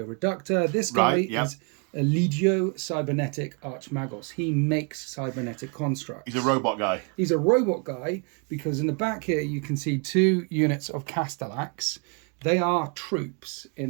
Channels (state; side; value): quieter; left; 35.0 dB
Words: Reductor? This guy is a Legio Cybernetic Archmagos. He makes cybernetic constructs. He's a robot guy. He's a robot guy because in the back here you can see 2 units of Castellax. They are troops